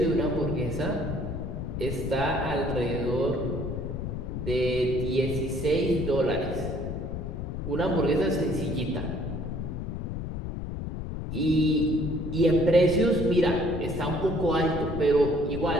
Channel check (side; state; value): left; noise; rumble, 5 dB below the sound